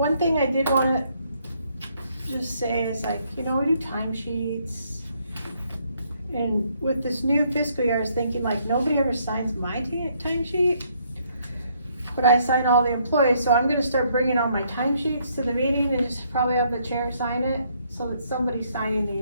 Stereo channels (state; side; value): inverted; both; correlation -0.69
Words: thing I did wanna just say is we do timesheets. And with this new fiscal year, I was thinking nobody ever signs my timesheet. But I sign all the employees, so I'm gonna start bringing all my timesheets to the meeting and just probably have the chair sign it, so that somebody's signing